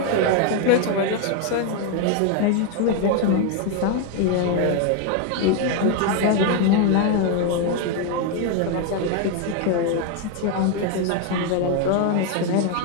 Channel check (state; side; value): different; both; correlation 0.01